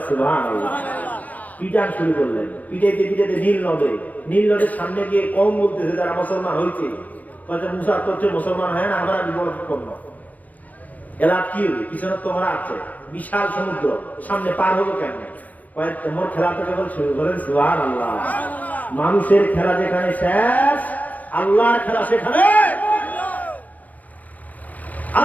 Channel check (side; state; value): right; late; 0.075 ms